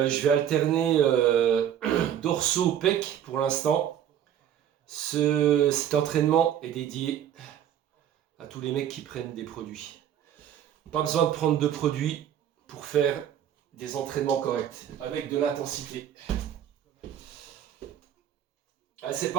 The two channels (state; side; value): quieter; left; 10.0 dB